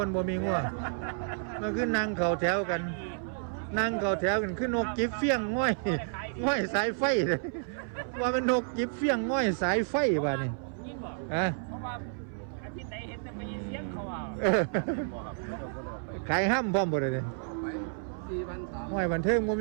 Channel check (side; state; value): left; silent; 57 dB below the other